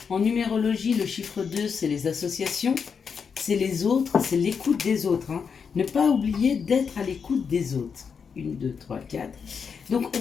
En numérologie, le chiffre 2, c'est les associations, c'est les autres, c'est l'écoute des autres. Ne pas oublier d'être à l'écoute des autres. 1, 2, 3, 4. Donc, on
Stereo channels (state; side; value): quieter; right; 6.2 dB